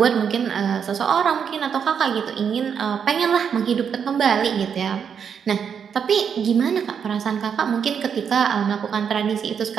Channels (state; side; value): quieter; left; 7.3 dB